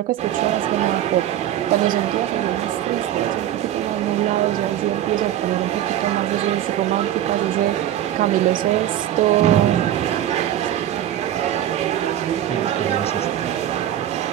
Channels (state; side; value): quieter; left; 11.9 dB